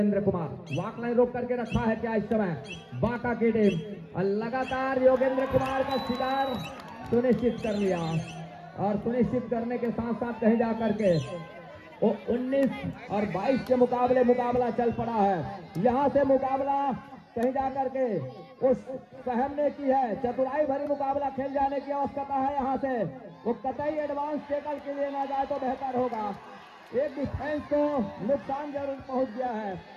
कुमार। वाक लाइन रोक करके रखा है क्या इस समय बाका की टीम, और लगातार योगेंद्र कुमार का शिकार सुनिश्चित कर लिया, और सुनिश्चित करने के साथ साथ कहीं जाकर के वो 19 और 22 के मुकाबले मुकाबला चल पड़ा है। यहां से मुकाबला कहीं जाकर के उस सहम ने की है। चतुराई भरी मुकाबला खेल जाने की आवश्यकता है। यहां से वो कतई एडवांस टेकल के लिए ना जाए तो बेहतर होगा। एक डिफेंस को नुकसान जरूर पहुंच गया है।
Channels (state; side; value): identical; both; correlation 1.00